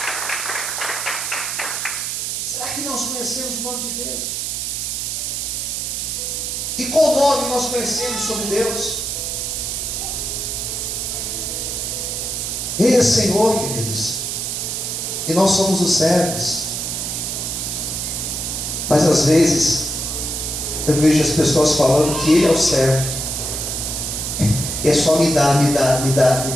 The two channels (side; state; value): right; noise; hiss, 2 dB below the sound